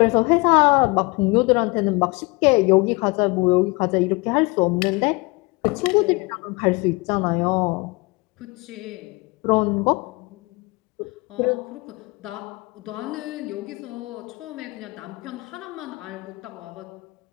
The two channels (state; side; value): quieter; right; 26.2 dB